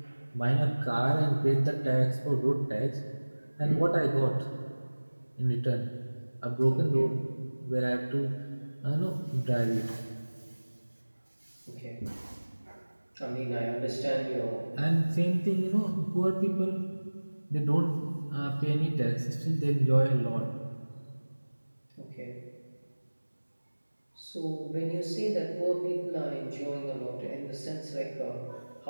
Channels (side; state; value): both; inverted; correlation -1.00